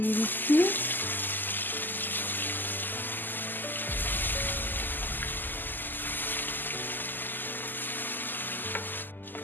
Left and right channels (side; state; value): right; late; 0.089 ms